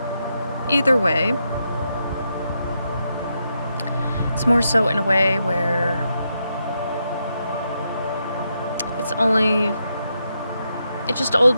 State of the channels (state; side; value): inverted; both; correlation -0.83